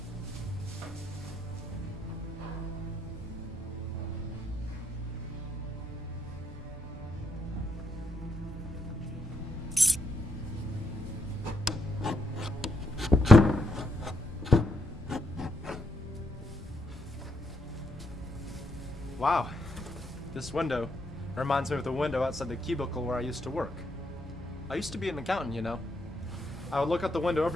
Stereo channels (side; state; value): both; normal; correlation 0.77